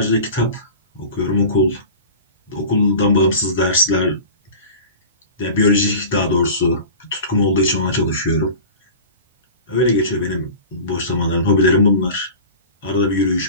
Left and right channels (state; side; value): inverted; both; correlation -0.36